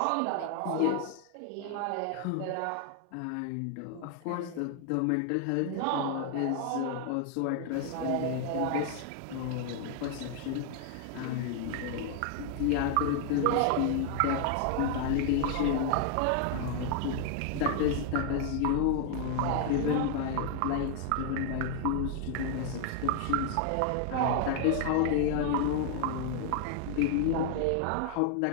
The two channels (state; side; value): different; both; correlation 0.00